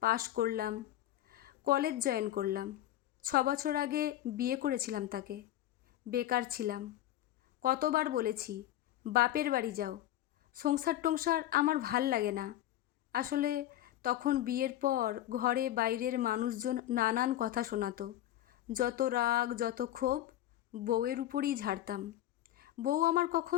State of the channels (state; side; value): quieter; right; 13.5 dB